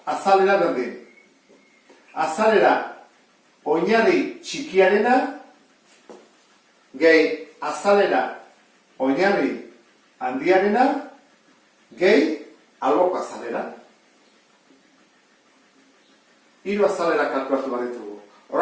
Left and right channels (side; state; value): both; identical; correlation 1.00